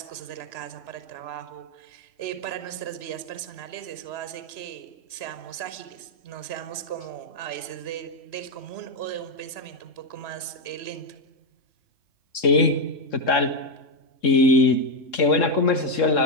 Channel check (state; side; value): late; right; 3.0 ms